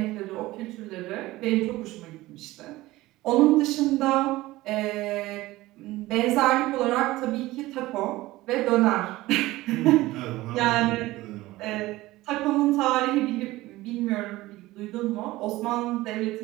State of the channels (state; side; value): quieter; left; 18.2 dB